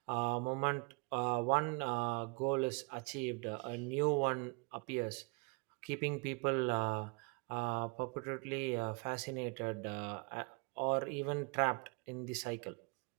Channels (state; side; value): quieter; left; 31.9 dB